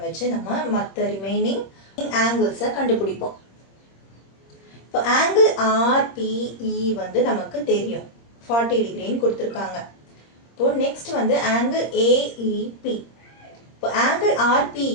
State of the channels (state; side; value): late; right; 26 ms